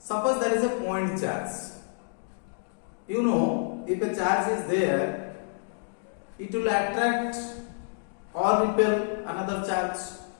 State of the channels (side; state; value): right; silent; digital silence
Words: there is a point charge. You know, if a charge is there, it will attract or repel another charge.